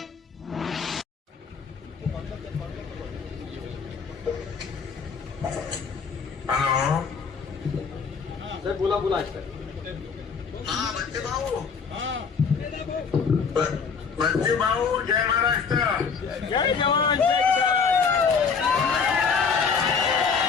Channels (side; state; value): right; quieter; 5.7 dB